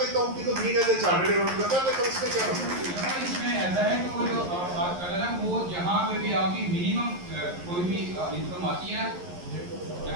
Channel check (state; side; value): late; left; 11 ms